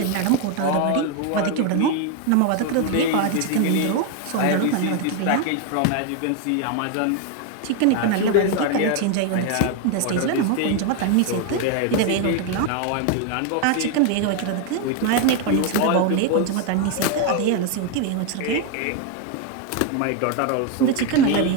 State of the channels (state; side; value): different; both; correlation 0.01